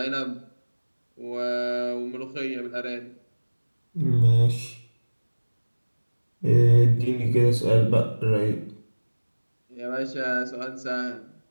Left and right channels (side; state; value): both; inverted; correlation -1.00